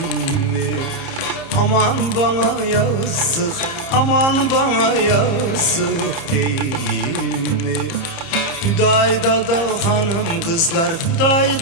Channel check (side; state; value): right; late; 30 ms